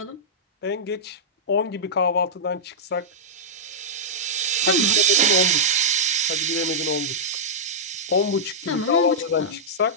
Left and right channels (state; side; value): normal; both; correlation -0.11